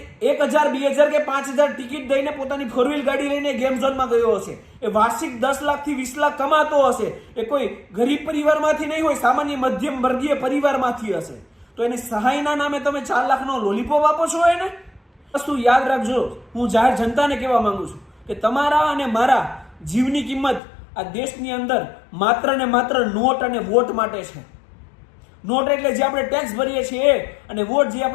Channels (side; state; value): right; drops out; at 20.6 s